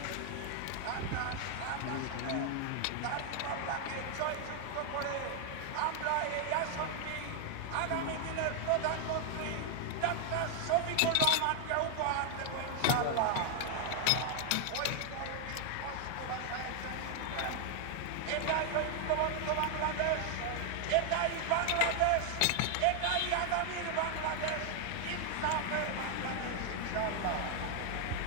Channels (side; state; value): both; different; correlation 0.00